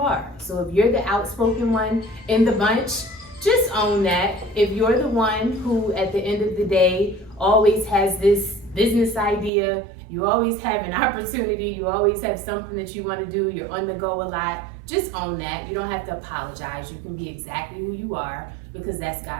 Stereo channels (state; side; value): drops out; left; at 9.5 s